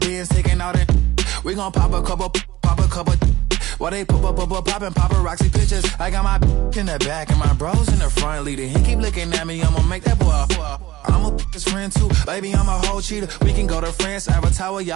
beans taking out it. We gon' pop a couple. While they poppin' paparazzi pictures. I got my in the back and my bros in the front leading. He keep looking at me, I'ma make that boy. I'm a his friend too, baby. I'm a whole cheater. We can go to France, Avatar,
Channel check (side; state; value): left; quieter; 16.8 dB